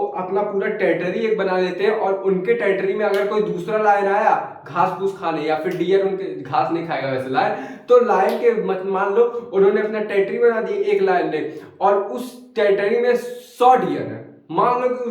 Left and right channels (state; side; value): identical; both; correlation 1.00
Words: अपना पूरा टेरिटरी एक बना लेते हैं, और उनके टेरिटरी में अगर कोई दूसरा लायन आया घास फूस खाने, या फिर डियर उनके घास नहीं खाएगा वैसे लायन, तो लायन के मान लो उन्होंने अपना टेरिटरी बना दिया एक लायन ने, और उस टेरिटरी में 100 डियर है, मान लो कि